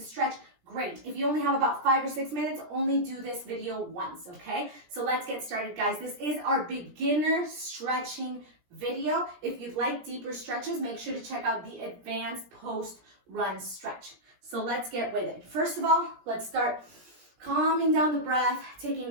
stretch, great. If you only have about 5 or 6 minutes, only do this video once, okay? So let's get started, guys. This is our beginner stretching video. If you'd like deeper stretches, make sure to check out the advanced post-run stretch. So let's get with it. First of all, let's start calming down the breath, taking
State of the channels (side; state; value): left; late; 17 ms